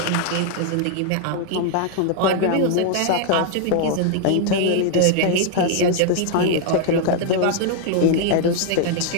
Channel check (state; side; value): different; both; correlation 0.00